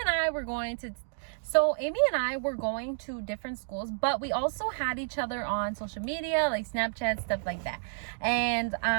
and I were going to different schools, but we also had each other on social media, like Snapchat, stuff like that. And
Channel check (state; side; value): silent; left; digital silence